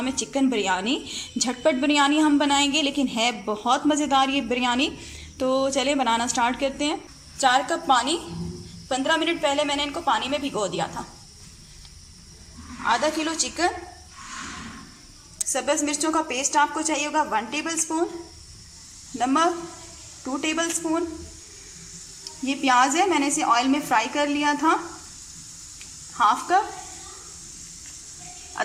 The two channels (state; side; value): identical; both; correlation 1.00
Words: है चिकन बिरयानी। झटपट बिरयानी हम बनाएंगे, लेकिन है बहुत मज़ेदार ये बिरयानी। तो चलिए बनाना स्टार्ट करते हैं। 4 कप पानी, 15 मिनट पहले मैंने इनको पानी में भिगो दिया था। आधा किलो चिकन, सब्ज़ मिर्चों का पेस्ट आपको चाहिए होगा 1 टेबल स्पून, नमक 2 टेबल स्पून। ये प्याज है, मैंने इसे ऑयल में फ्राई कर लिया था, 1/2 कप।